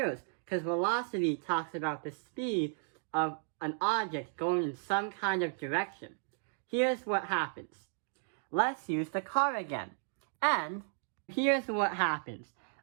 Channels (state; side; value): silent; left; 55 dB below the other